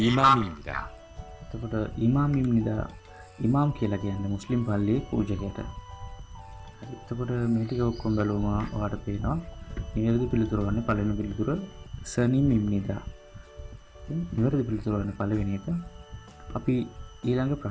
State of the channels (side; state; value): both; identical; correlation 1.00